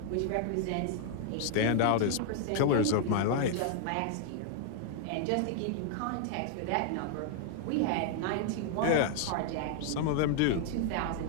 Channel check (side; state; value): both; different; correlation 0.00